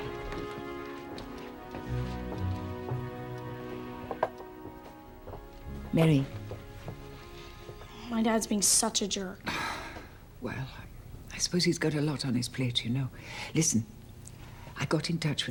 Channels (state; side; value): identical; both; correlation 1.00